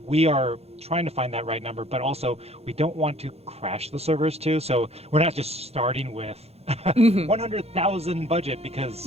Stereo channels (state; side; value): late; left; 0.30 ms